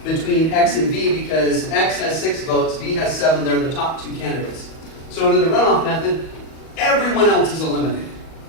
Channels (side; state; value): right; late; 38 ms